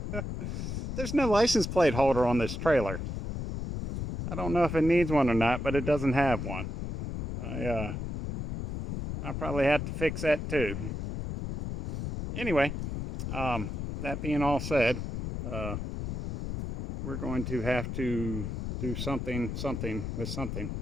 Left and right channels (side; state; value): left; noise; rumble, 5 dB below the sound